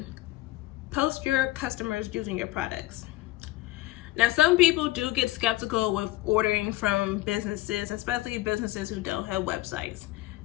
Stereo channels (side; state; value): right; quieter; 17.7 dB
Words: post your customers using your products. Now, some people do get skeptical with ordering from businesses, especially businesses who don't have websites.